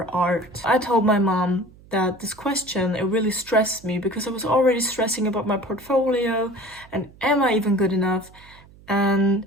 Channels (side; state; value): right; noise; hum, 24 dB below the sound